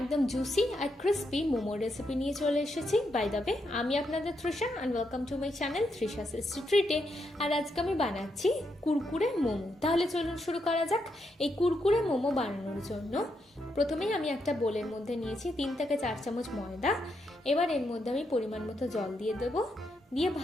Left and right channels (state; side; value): normal; both; correlation 0.81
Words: জুসি আর ক্রিস্পি মোমো রেসিপি নিয়ে চলে এসেছি। বাই দ্য ওয়ে, আমি আপনাদের Trisha and welcome to my channel Trisha's ট্রিটে। আর আজকে আমি বানাচ্ছি কুরকুরে মোমো। তাহলে চলুন শুরু করা যাক। এই কুরকুরে মোমো বানানোর জন্য প্রথমেই আমি একটা বোলের মধ্যে নিয়েছি 3 থেকে 4 চামচ ময়দা। এবার এর মধ্যে আমি পরিমাণ মতো জল দিয়ে দেবো, দিয়ে